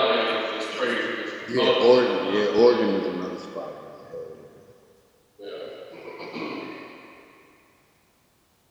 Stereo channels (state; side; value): identical; both; correlation 1.00